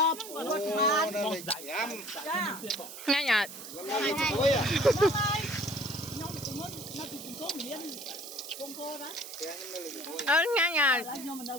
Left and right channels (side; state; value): right; noise; hiss, 12 dB below the sound